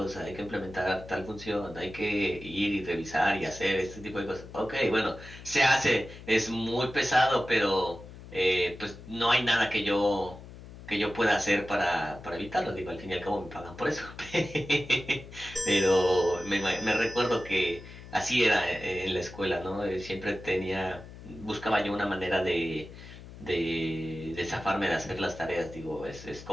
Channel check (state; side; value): noise; left; hum, 16 dB below the sound